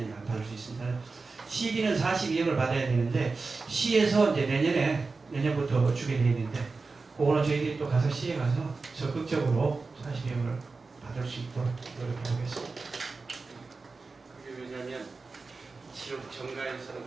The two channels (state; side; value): quieter; left; 4.0 dB